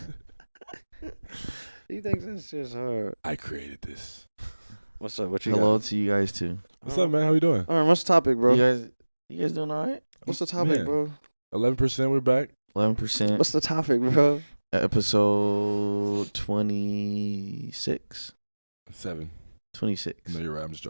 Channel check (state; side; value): inverted; both; correlation -1.00